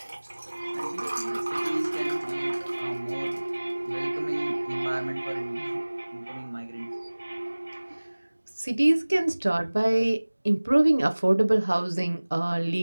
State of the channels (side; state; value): both; inverted; correlation -1.00